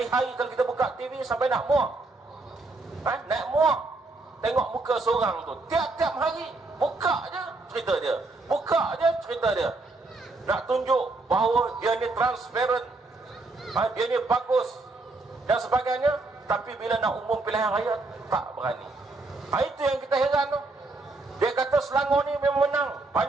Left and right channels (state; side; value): quieter; left; 3.3 dB